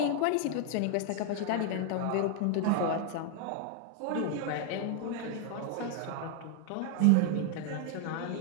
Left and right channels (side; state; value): both; different; correlation 0.00